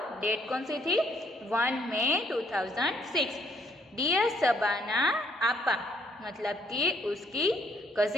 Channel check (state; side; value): normal; both; correlation 0.68